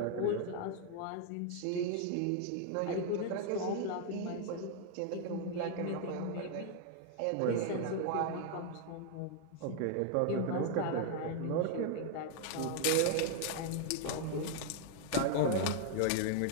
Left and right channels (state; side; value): different; both; correlation 0.00